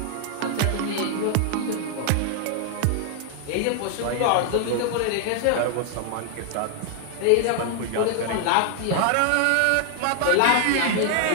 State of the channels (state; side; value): different; both; correlation 0.00